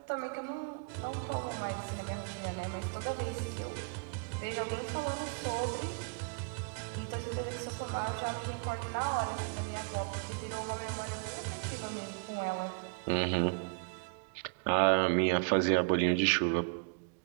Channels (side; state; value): left; quieter; 37.4 dB